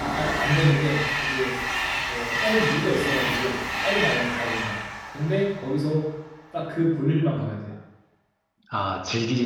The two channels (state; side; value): identical; both; correlation 1.00